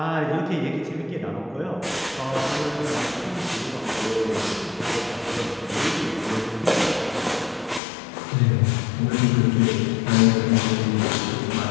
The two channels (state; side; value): drops out; right; at 7.8 s